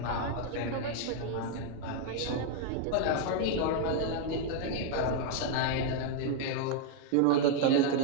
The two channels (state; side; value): different; both; correlation 0.00